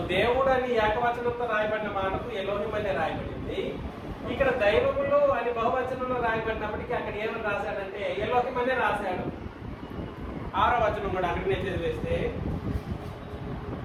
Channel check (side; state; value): both; identical; correlation 1.00